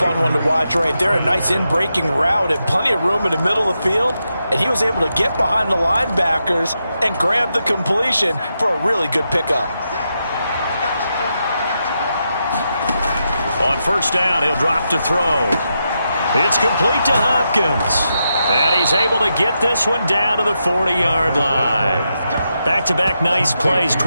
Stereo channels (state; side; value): inverted; both; correlation -0.85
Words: one to watch right there. A nice in-breaking route and plenty of room in the middle of the field. And he was able to get behind the linebackers and grab the completion for a really good pickup. On first down, he'll drop to throw. It's complete to Hopkins. And he's able to get this one down to the 40-yard line. Back-to-back nice plays,